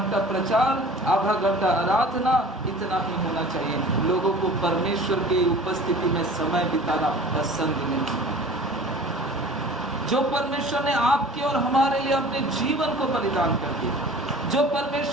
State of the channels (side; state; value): both; normal; correlation 0.44